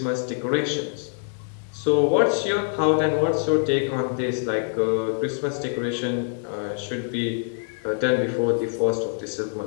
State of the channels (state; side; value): silent; right; digital silence